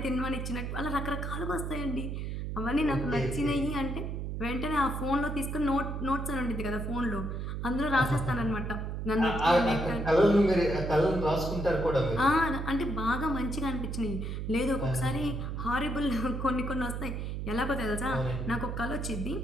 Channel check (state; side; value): noise; right; hum, 4 dB below the sound